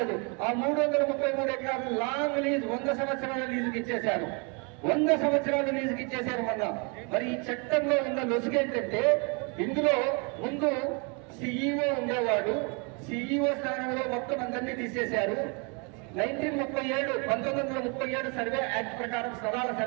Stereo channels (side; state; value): left; quieter; 33.7 dB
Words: ఆ 333 ఎకరాలు లాంగ్ లీజ్ 100 సంవత్సరాల లీజుకి ఇచ్చేశారు. 100 సంవత్సరాలు లీజుకి ఇచ్చేశారు మొన్న. మరి ఈ చట్టంలో ఉన్న లొసుగేంటంటే, ఇందులో ముందు సిఇఓ ఉండేవాడు. సిఇఓ స్థానంలో మొత్తం అందరినీ తీసేశారు. 1937 సర్వే యాక్ట్ ప్రకారం స్థలాల